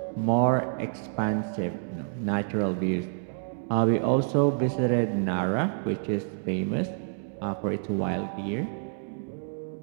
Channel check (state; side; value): silent; left; digital silence